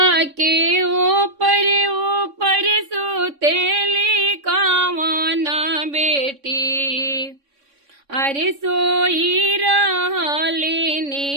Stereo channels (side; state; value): left; late; 3.6 ms